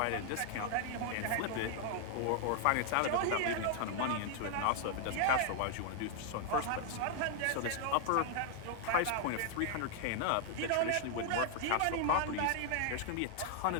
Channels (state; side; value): different; both; correlation 0.00